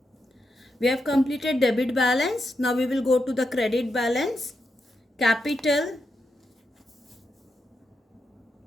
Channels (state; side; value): normal; both; correlation 0.85